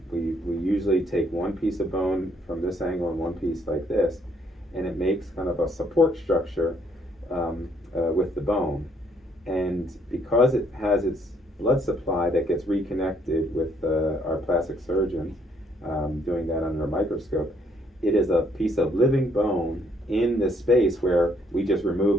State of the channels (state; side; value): normal; both; correlation 0.68